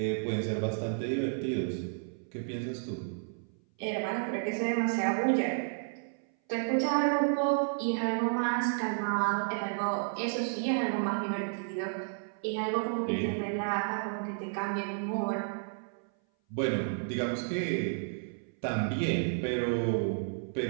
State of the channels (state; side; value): silent; left; 57 dB below the other